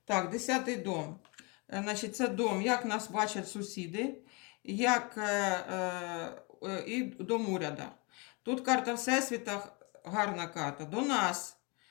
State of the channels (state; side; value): quieter; right; 30.2 dB